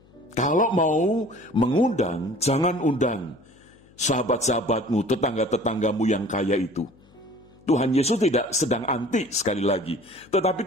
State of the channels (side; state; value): left; noise; hum, 28 dB below the sound